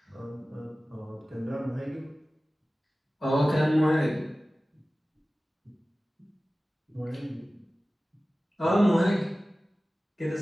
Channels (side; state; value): both; normal; correlation 0.97